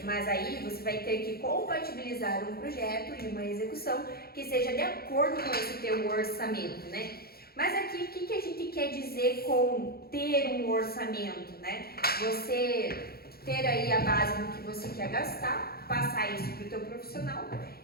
mas aí você vai ter que compatibilizar um projeto e uma execução que seja de acordo com esse teu orçamento, né? Mas aqui, o que a gente quer dizer com ter um orçamento, né? Você ter aí a base do que você quer gastar, passar isso para o teu profissional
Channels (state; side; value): late; right; 0.45 ms